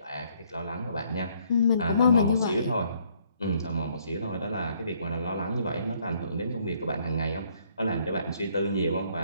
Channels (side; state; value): both; inverted; correlation -0.66